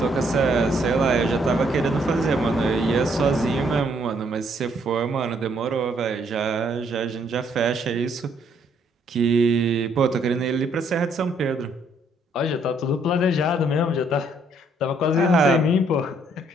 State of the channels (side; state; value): both; normal; correlation 0.68